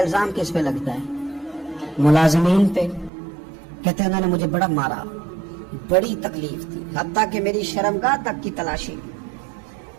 کس پہ لگتا ہے؟ ملازمین پہ. کہتے ہیں انہوں نے مجھے بڑا مارا، بڑی تکلیف تھی، حتیٰ کہ میری شرمگاہ تک کی تلاشی،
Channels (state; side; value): drops out; left; at 3.1 s